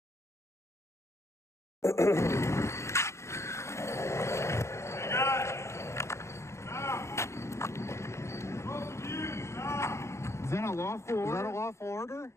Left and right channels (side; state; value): right; late; 0.13 ms